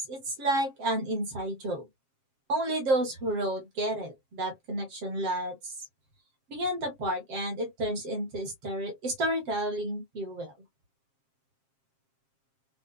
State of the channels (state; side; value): late; left; 7.5 ms